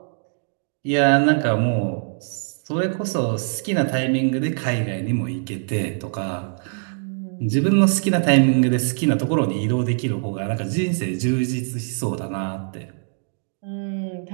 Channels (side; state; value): left; silent; digital silence